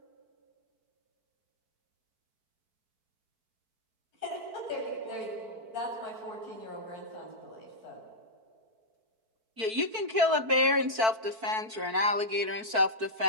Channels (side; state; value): left; late; 4.5 ms